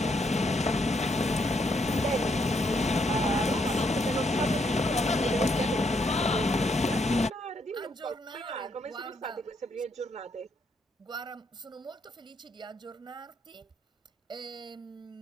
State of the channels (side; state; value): both; normal; correlation 0.75